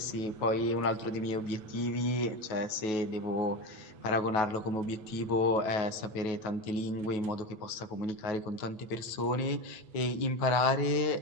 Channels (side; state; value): right; late; 9.3 ms